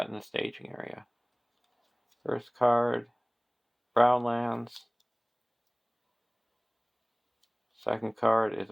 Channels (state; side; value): identical; both; correlation 1.00